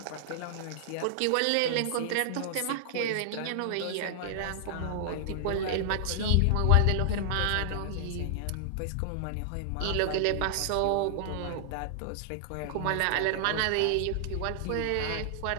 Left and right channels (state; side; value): different; both; correlation -0.01